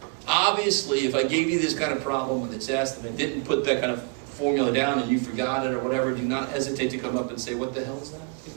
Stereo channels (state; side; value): quieter; left; 35.2 dB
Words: Obviously, if I gave you this kind of problem on the test and I didn't put that kind of formula down and you forgot it or whatever, do not hesitate to come up and say, what the hell is that? Can